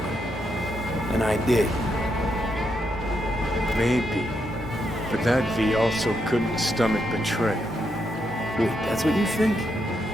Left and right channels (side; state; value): both; normal; correlation 0.80